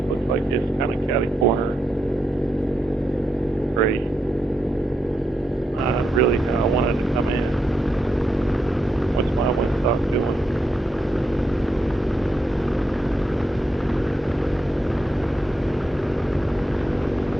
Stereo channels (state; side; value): normal; both; correlation 0.83